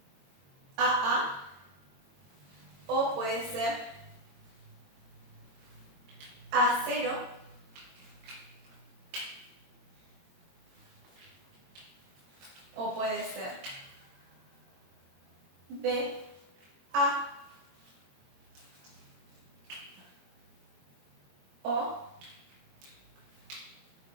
AA o puede ser A0 o puede ser BA o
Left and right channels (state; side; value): late; left; 22 ms